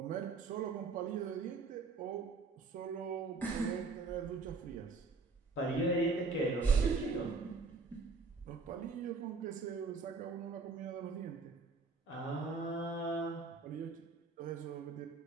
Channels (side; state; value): left; quieter; 4.1 dB